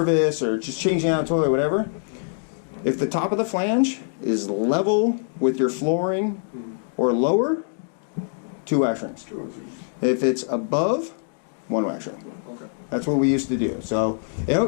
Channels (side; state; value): right; silent; digital silence